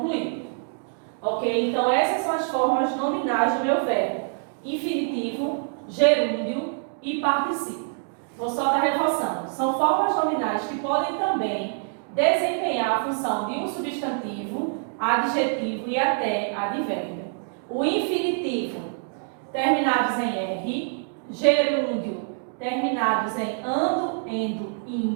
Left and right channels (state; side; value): silent; left; 61 dB below the other